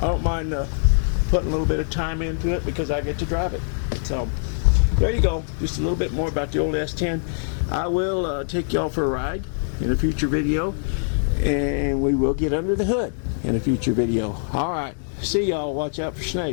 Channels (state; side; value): silent; right; digital silence